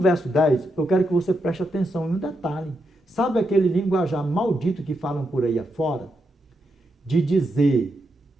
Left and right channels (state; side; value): normal; both; correlation 0.83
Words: 10, eu quero que você preste atenção em um detalhe. Sabe aquele linguajar maldito que falam por aí afora? De dizer